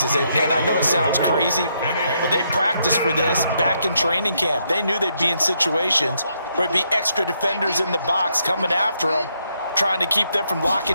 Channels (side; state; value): both; inverted; correlation -0.76